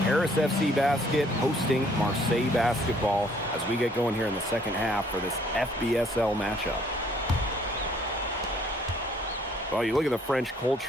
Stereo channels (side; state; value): both; normal; correlation 0.62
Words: Paris FC Basket hosting Marseille Basketball as we get going here in the second half for this FBSL matchup. Well, you look at the French